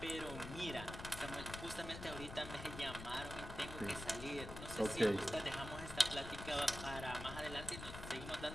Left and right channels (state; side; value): noise; left; rumble, 9 dB below the sound